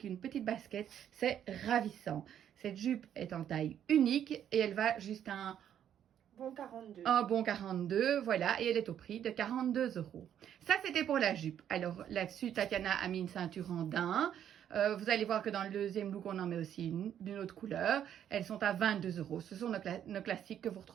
une petite basket, c'est ravissant. Cette jupe est en taille unique et elle va jusqu'à un bon 42, voilà, et elle est au prix de 42 €. Ça, c'était pour la jupe. Alors, là-dessus, Tatiana a mis une ceinture en daim. Vous allez voir que dans le deuxième look, on en met aussi une d'une autre couleur. Elles sont à 22 €. Ce sont nos classiques que vous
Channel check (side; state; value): left; quieter; 9.9 dB